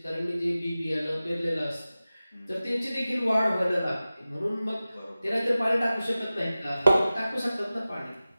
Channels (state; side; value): inverted; both; correlation -0.96